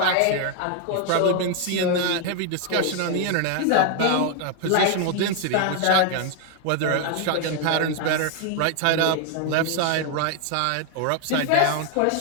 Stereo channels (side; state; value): both; different; correlation 0.00